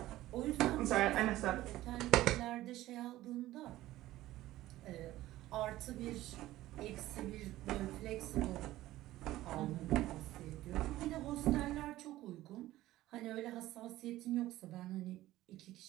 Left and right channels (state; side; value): quieter; left; 15.7 dB